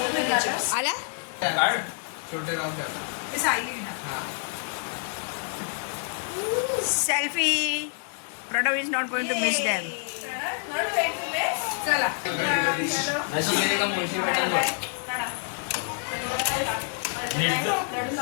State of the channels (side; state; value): right; silent; 55 dB below the other